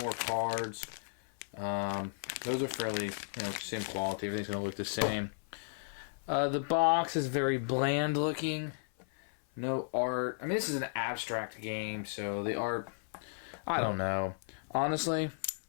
more cards. Those are fairly, same quality. Everything's going to look the same. The box is very bland looking. No art. I mean, this is an abstract game, so the art, I don't know. Honestly,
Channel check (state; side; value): silent; right; 55 dB below the other